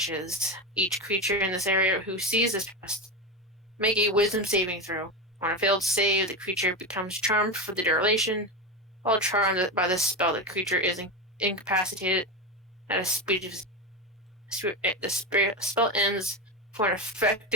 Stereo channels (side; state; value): both; normal; correlation 0.17